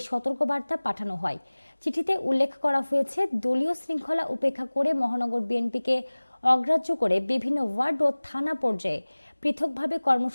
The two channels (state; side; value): inverted; both; correlation -1.00